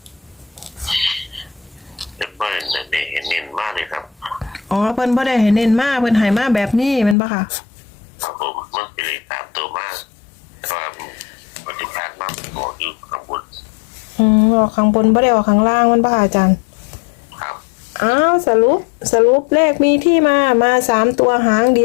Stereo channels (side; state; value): right; drops out; at 7.2 s